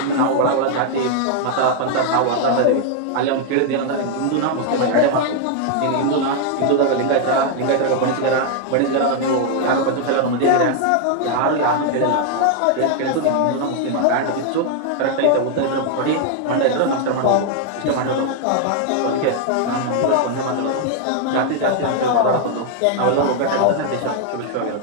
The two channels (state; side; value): different; both; correlation 0.00